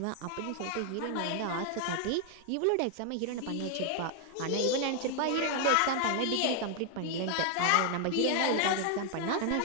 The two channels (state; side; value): different; both; correlation 0.00